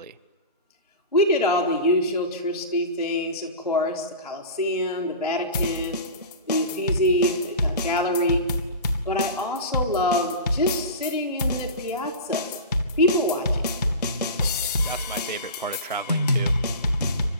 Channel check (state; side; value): inverted; both; correlation -0.30